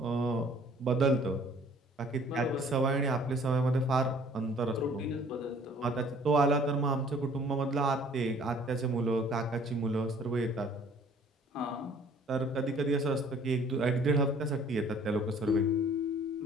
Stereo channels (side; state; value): both; normal; correlation 0.55